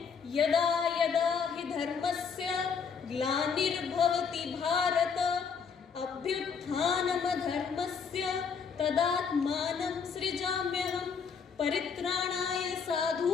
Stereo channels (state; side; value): quieter; right; 6.1 dB